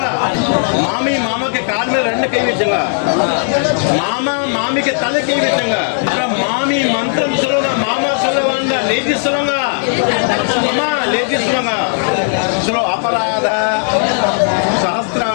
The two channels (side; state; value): right; silent; digital silence